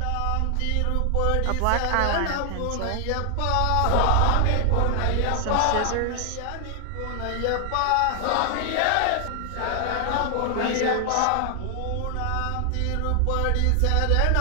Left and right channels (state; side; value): different; both; correlation 0.00